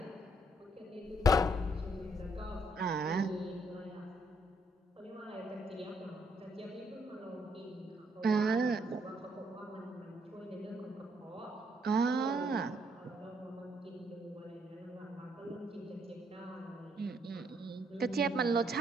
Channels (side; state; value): both; normal; correlation 0.71